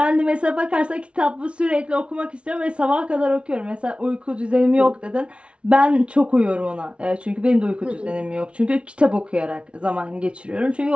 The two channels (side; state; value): left; late; 0.060 ms